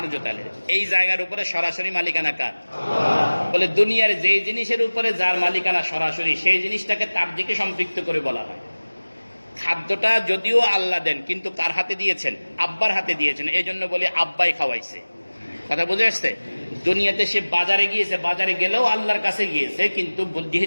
আলীর। এই জায়গার উপরে সরাসরি মালিকানা কার? বলে দুনিয়ার যে জিনিসের উপরে যার মালিকানা সরাসরি, সেই জিনিসটাকে তার দিকে সম্পৃক্ত করে বলা হয়। খাদ্যটা যদিও আল্লাহ দেন, কিন্তু কার হাতে দিয়েছেন? আব্বার হাতে দিয়েছেন, এই জন্য বলি আব্বাই খাওয়াইছে। কথা বুঝে আসছে? দুনিয়াতে সে বাজারে গিয়েছে, বাজারে গেলেও আল্লাহর কাছে গিয়েছে, কিন্তু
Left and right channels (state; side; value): inverted; both; correlation -1.00